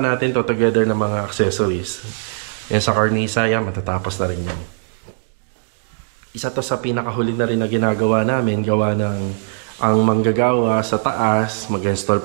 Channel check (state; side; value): silent; left; digital silence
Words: natin to together ng mga accessories. Yan sa cornisa, yan, matatapos na rin yan. Isa to sa pinakahuli na rin na ginagawa namin, gawa ng ang manggagawa sa taas, mag-install